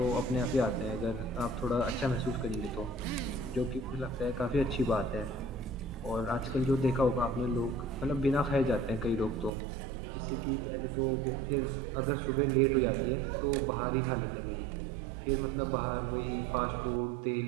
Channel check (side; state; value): left; drops out; at 9.5 s